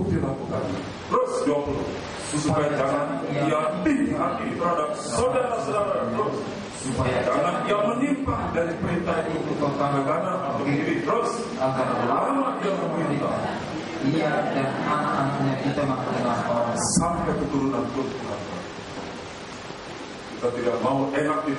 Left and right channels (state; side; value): identical; both; correlation 1.00